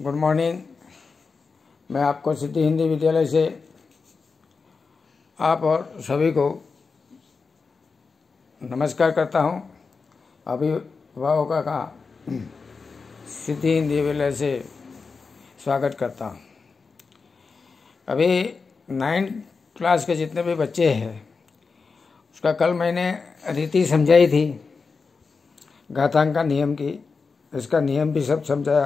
good morning. मैं आपको सिद्धि हिंदी विद्यालय से आप और सभी को नमस्कार करता हूं। अभिभावकों का सिद्धि हिंदी विद्यालय से स्वागत करता हूं। अभी 9th क्लास के जितने भी बच्चे हैं उसका कल मैंने रीति समझाई थी, घातांक का नियम की, इसका नियम भी सब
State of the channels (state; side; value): quieter; right; 4.7 dB